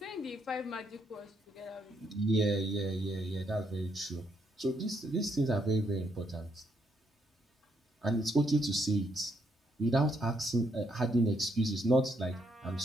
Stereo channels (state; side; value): normal; both; correlation 0.75